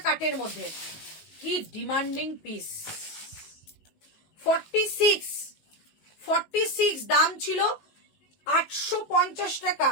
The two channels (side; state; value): right; late; 19 ms